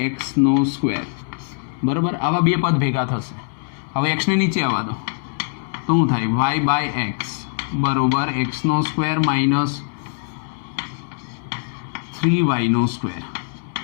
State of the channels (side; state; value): right; silent; 64 dB below the other